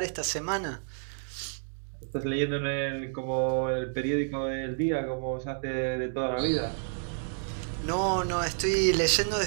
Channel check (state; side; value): silent; left; digital silence